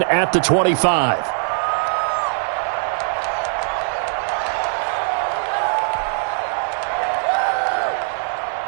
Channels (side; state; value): left; silent; 65 dB below the other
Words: at the 25.